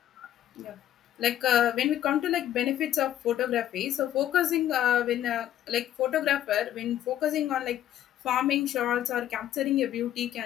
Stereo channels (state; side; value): quieter; right; 11.9 dB